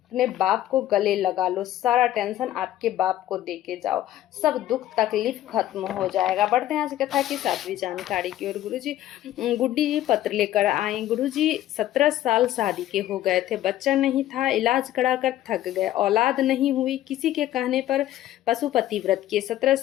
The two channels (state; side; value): quieter; right; 13.5 dB